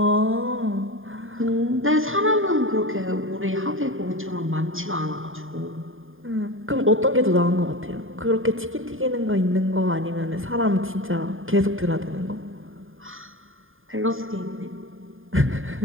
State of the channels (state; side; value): late; left; 0.59 ms